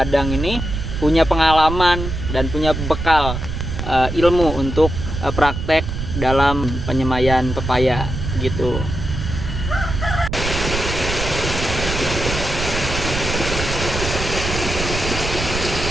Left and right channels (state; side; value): noise; right; rumble, 5 dB below the sound